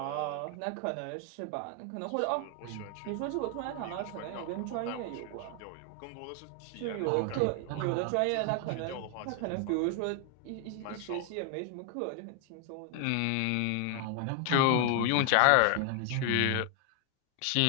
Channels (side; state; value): both; different; correlation 0.00